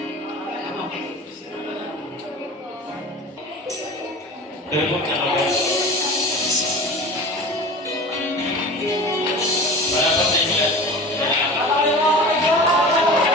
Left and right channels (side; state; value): both; normal; correlation 0.37